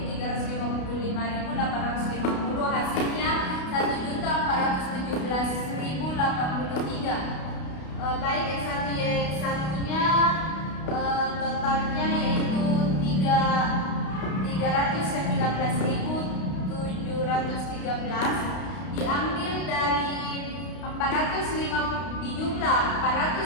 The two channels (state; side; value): late; right; 32 ms